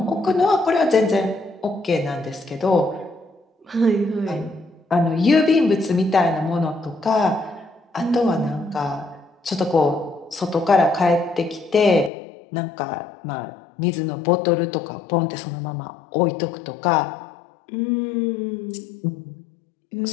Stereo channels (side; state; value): right; drops out; at 12.1 s